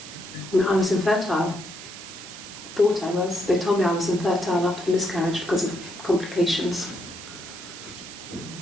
I mean, I was infertile. Thought I was. They told me I was infertile after the miscarriage because of complications.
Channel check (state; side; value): noise; right; hiss, 13 dB below the sound